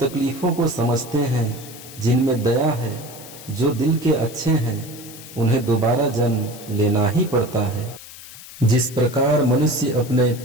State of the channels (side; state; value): left; noise; hiss, 16 dB below the sound